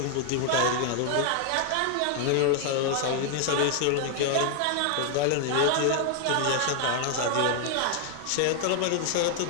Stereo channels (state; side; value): different; both; correlation 0.00